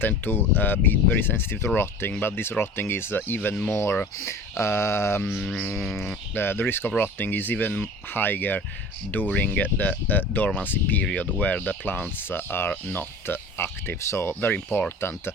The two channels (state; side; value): normal; both; correlation 0.39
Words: to be very sensitive to rotting, but this rotting is even more, the risk of rotting is even higher during the dormancy period where the plants are not active. So very important,